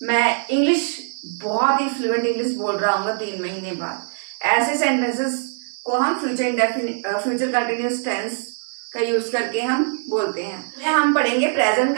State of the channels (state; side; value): silent; left; digital silence